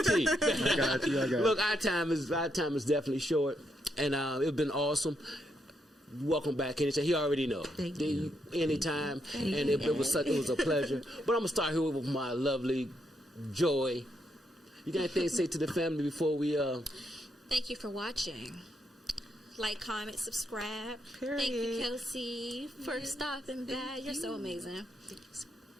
tea. I got you. Look, our time is definitely short, and it's been awesome. Welcome back anytime. He already know. Thank you. Anytime, and it was a pleasure. But I'm gonna start here with my lovely Joy. You got anything to say to the family before we Thank you for watching. Like, comment, subscribe. Period. Thank you, Kelsey, for stopping by. You're so amazing.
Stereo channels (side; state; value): both; normal; correlation 0.79